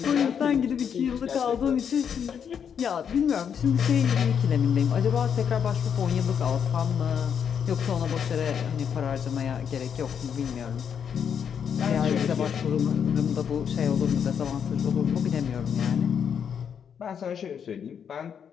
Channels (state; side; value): quieter; right; 7.7 dB